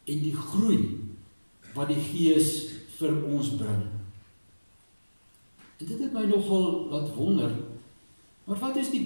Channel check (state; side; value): inverted; both; correlation -1.00